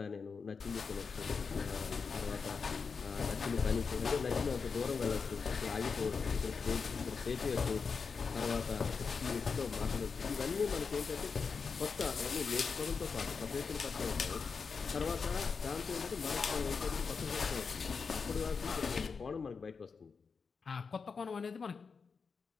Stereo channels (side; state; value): right; quieter; 5.3 dB